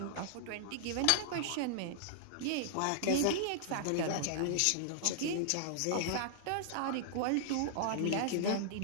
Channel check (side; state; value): both; different; correlation -0.01